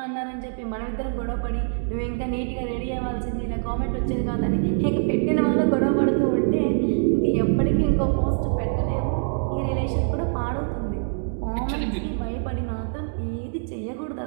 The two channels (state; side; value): silent; left; digital silence